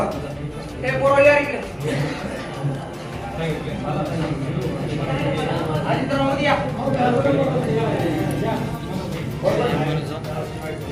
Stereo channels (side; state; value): both; identical; correlation 1.00